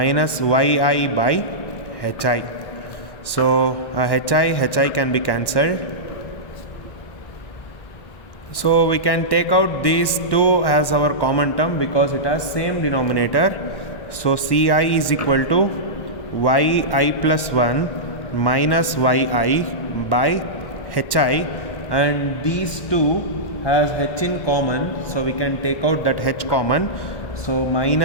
yi by hi. So hi can be cancelled. So we can take out these two as our common term because it has same denominator. So Ci is equal to yi plus 1 minus yi by hi, and these two has h in common, so we can take out that h common. So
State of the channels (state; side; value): late; right; 1.1 ms